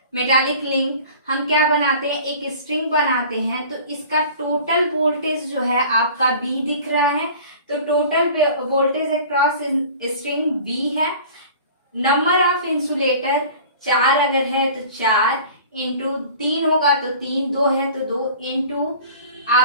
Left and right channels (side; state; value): both; inverted; correlation -0.43